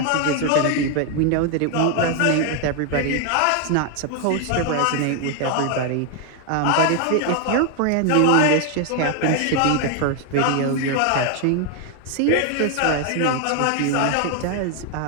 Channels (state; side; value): different; both; correlation 0.00